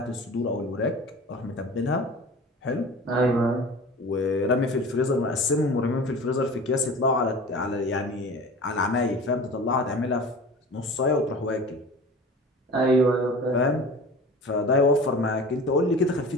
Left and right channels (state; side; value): normal; both; correlation 0.38